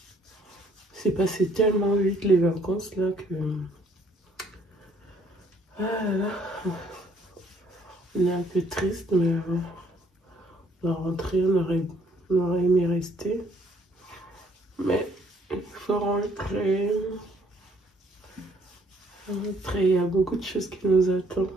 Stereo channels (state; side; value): normal; both; correlation 0.64